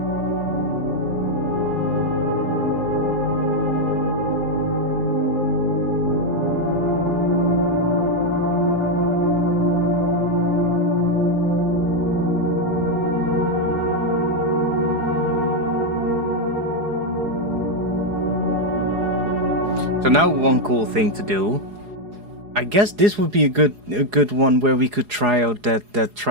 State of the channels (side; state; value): left; late; 4.8 ms